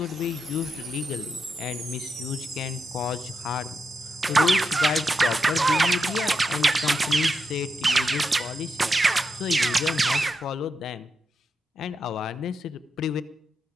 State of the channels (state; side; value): normal; both; correlation 0.85